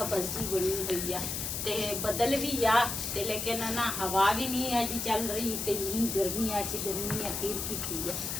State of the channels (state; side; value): noise; left; hiss, 3 dB below the sound